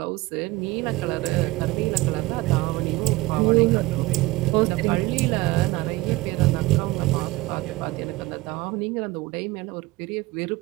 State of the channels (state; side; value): quieter; left; 20.0 dB